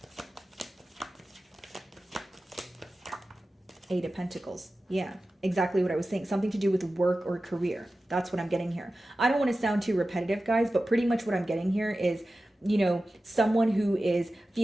Eight of Pentacles. Yeah, exactly what I was saying. Something to do with work or career. That's what I'm getting here. I don't want to sound too repetitive, guys, but pretty much what I'm getting here is, you know, someone who is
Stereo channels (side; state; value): both; normal; correlation 0.94